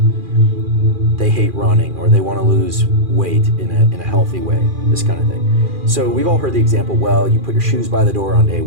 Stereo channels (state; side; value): late; left; 2.4 ms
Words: They hate running, or they want to lose weight in a healthy way, this kind of thing. So we've all heard the example, well, you put your shoes by the door on day